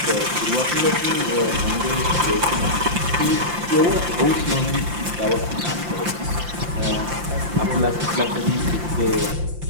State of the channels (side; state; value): left; late; 5.8 ms